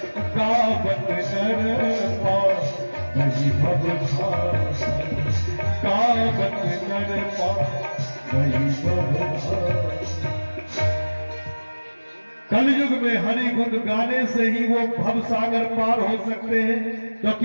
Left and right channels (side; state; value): both; inverted; correlation -1.00